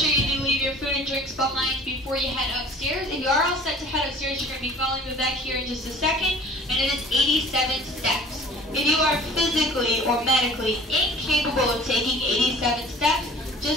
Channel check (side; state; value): both; normal; correlation 0.47